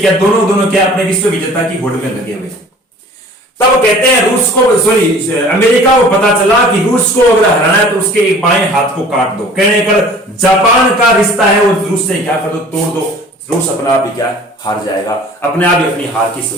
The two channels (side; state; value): both; normal; correlation 0.47